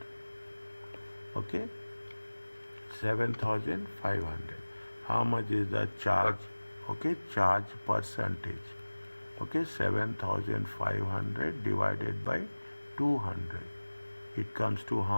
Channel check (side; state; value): both; inverted; correlation -1.00